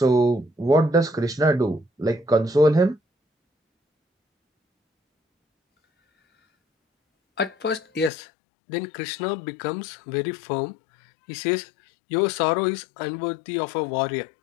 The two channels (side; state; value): right; drops out; at 8.1 s